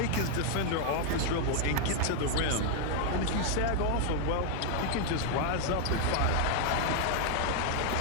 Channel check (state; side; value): different; both; correlation 0.00